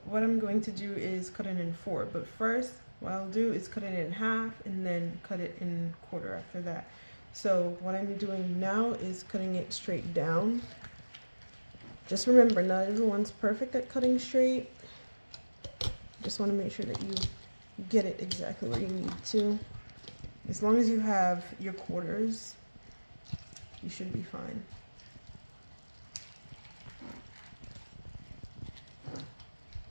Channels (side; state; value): both; inverted; correlation -1.00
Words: what I'm going to do is cut it in four, but first what I'll do is cut it in half and then cut it in quarter after that. So what I'm doing now is cutting it straight down. Just remember, not everyone's perfect at cutting straight. Just want to make sure that you get it exactly where you need to. As long as you have your quarters, you should be fine.